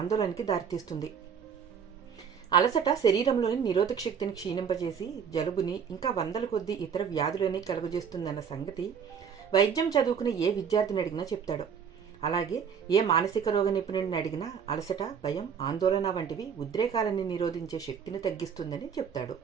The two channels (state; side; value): quieter; left; 7.1 dB